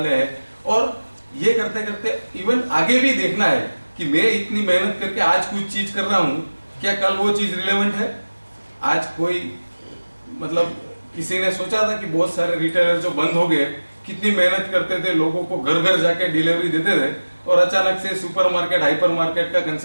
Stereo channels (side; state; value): both; inverted; correlation -1.00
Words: हैं। और ये करते करते इवन आगे भी देखना है कि मैं इतनी मेहनत करके आज कुछ चीज कर रहा हूँ, क्या कल वो चीज रिलेवेंट है। आज कोई मतलब किसी ने सोचा था कि बहुत सारे रिटेलर जो बंद हो गए, कितनी मेहनत करते थे, लोगों को घर घर जाके डिलीवरी देते थे, और अचानक से सुपरमार्केट, हाइपर मार्केट का